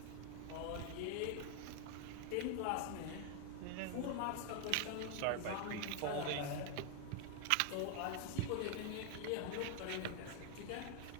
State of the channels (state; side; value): different; both; correlation 0.00